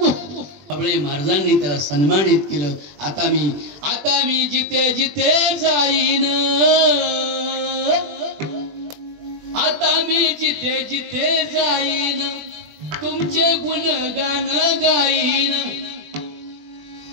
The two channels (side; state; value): left; late; 20 ms